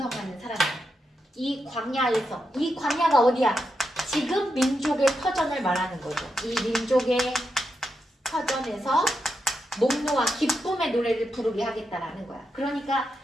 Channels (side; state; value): both; normal; correlation 0.85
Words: 사람이야. 이 광야에서, 이 광야가 어디야? 지금 민족의 터전을 말하는 거죠. 이 민족의 터전에서 목노와 기쁨의 노래를 부르게 하겠다라는 거야. 그러니까